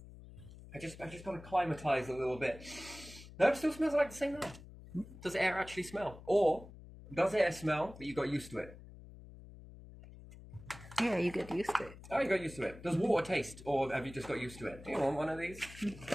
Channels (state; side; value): noise; left; hum, 17 dB below the sound